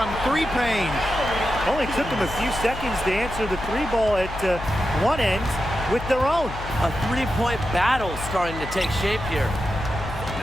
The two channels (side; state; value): left; noise; hum, 10 dB below the sound